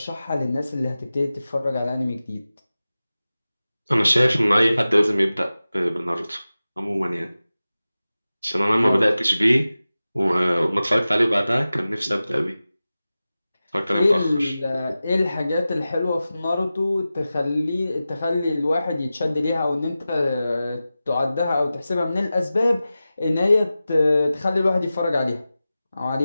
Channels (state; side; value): inverted; both; correlation -0.95